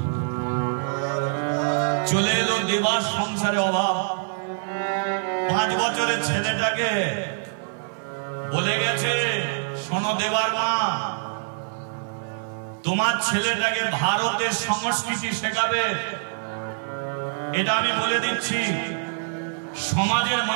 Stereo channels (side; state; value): left; silent; 59 dB below the other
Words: চলে এলো দেবার সংসারে অভাব। 5 বছরের ছেলেটাকে বলে গেছে, শোনো দেবার মা, তোমার ছেলেটাকে ভারতের সংস্কৃতি শেখাবে। এটা আমি বলে দিচ্ছি, সমাজের